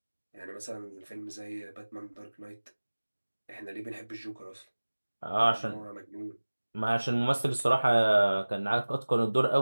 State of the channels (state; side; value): inverted; both; correlation -1.00